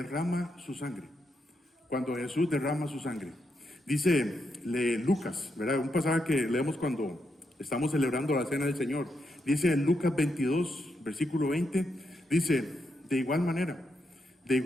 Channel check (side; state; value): both; normal; correlation 0.82